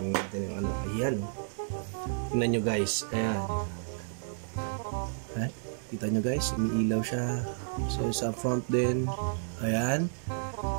natin yung ano. Ayan. Tingnan nyo guys. Ayan. Kita nyo guys, umiilaw siya. So sa front din, ayan.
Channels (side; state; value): left; silent; digital silence